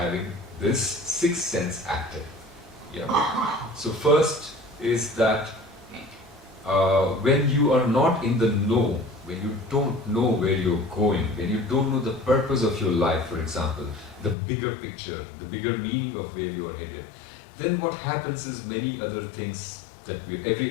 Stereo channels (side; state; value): right; drops out; at 14.4 s